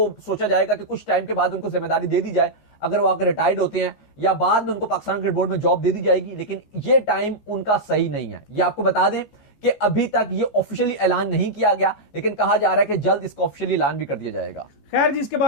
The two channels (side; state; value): right; late; 14 ms